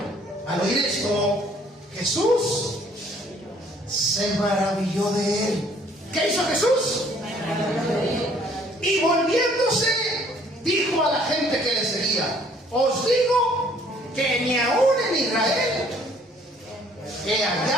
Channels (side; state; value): both; normal; correlation 0.60